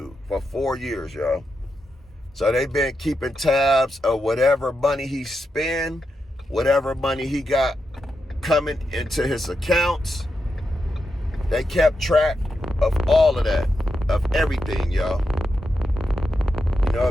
for 4 years, y'all. So they've been keeping tabs of whatever money he spent, whatever money he got coming into his accounts. They kept track of all of that, of everything, y'all. You know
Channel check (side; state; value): both; normal; correlation 0.86